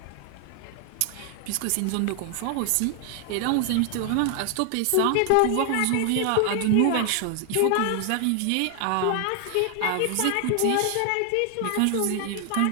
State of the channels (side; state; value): both; different; correlation 0.00